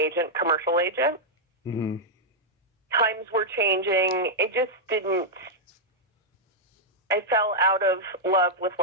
commercial agent. Mm-hmm. Times were changing. It just didn't. I fell out of love with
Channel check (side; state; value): both; normal; correlation -0.05